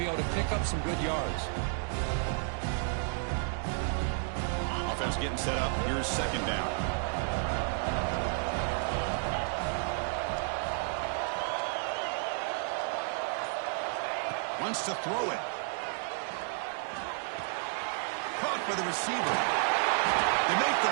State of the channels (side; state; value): left; silent; 57 dB below the other